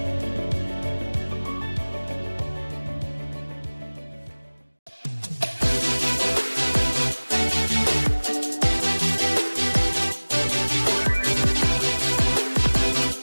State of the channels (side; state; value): both; inverted; correlation -1.00